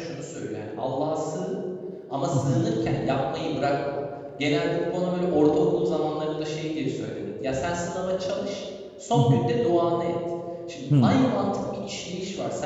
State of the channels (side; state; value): both; identical; correlation 1.00